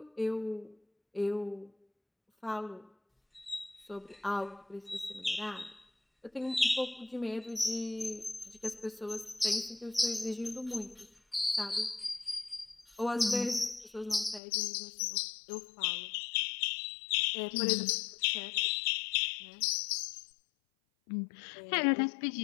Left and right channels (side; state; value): right; drops out; at 14.4 s